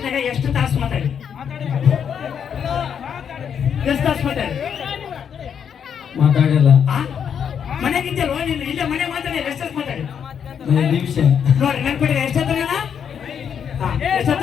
ಎಷ್ಟು ತಾಸು ಮಾತಾಡಿ? ಎಷ್ಟು ತಾಸು ಮಾತಾಡಿ? ಮಾತಾಡಿಲ್ಲ. ಮನೆಗಿದ್ದಲ್ವ ನೀನು? ಇಲ್ಲೇ ಮನೆ ಮಾತಾಡಿ ಎಷ್ಟು ತಾಸು ಮಾತಾಡಿ? ನಿಮಿಷ ನೋಡಿ ನೆನ್ಪಿಡಿ. ಎಷ್ಟೊತ್ತ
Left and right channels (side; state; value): right; quieter; 7.8 dB